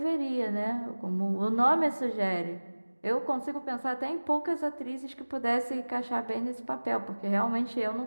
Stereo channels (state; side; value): inverted; both; correlation -1.00